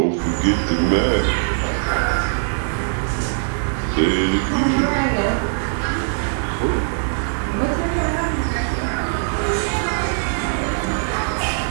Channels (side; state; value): left; silent; 60 dB below the other